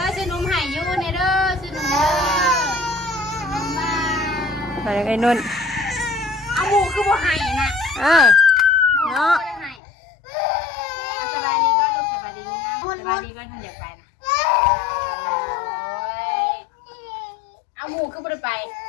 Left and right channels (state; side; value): drops out; right; at 9.8 s